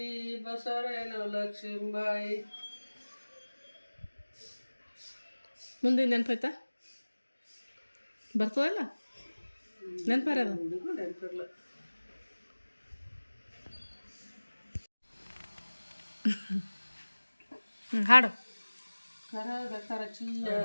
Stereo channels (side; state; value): both; inverted; correlation -1.00